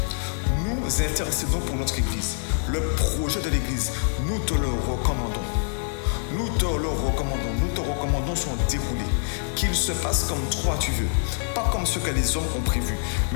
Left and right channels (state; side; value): silent; right; digital silence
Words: Nous intercédons pour notre Église. Le projet de l'Église, nous te le recommandons. Nous te le recommandons. Nous te recommandons son déroulé. Qu'il se passe comme toi tu veux. Pas comme ce que les hommes ont prévu,